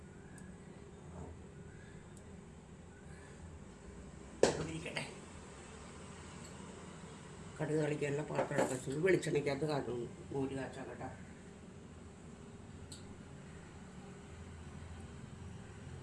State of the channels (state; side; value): identical; both; correlation 1.00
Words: ഇരിക്കട്ടെ. കടുക് കളിക്കാനുള്ള പാത്രം വെച്ചത് വെളിച്ചെണ്ണയ്ക്കകത്ത് കാട്ടുന്നു. മോര് കാച്ചാൻ കേട്ടോ.